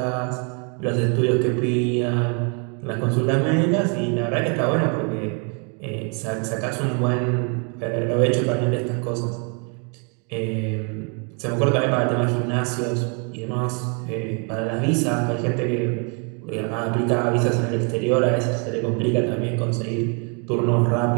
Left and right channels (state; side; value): quieter; left; 37.2 dB